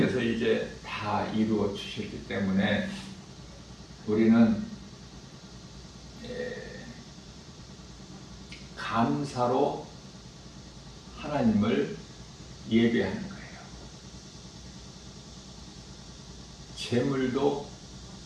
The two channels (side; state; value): both; identical; correlation 1.00